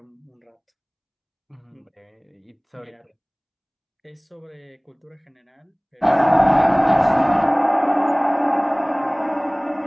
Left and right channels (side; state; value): both; identical; correlation 1.00